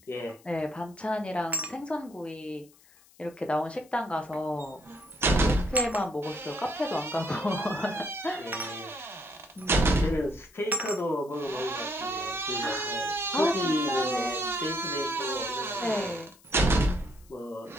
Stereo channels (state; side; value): noise; left; hiss, 27 dB below the sound